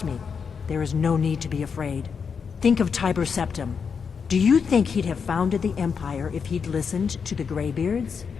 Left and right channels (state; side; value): quieter; right; 6.1 dB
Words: me, there is no need to be afraid. Think of Tiber Septim. Do you think he'd have founded the Empire if he'd listened to the Greybeards?